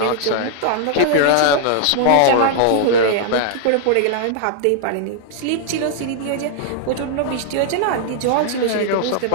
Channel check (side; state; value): both; different; correlation -0.01